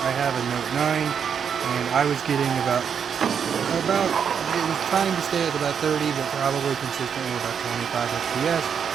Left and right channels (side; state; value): left; quieter; 7.3 dB